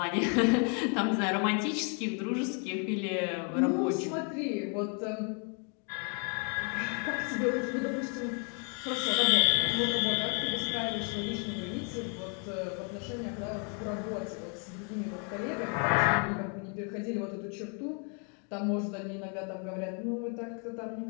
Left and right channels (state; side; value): quieter; right; 38.6 dB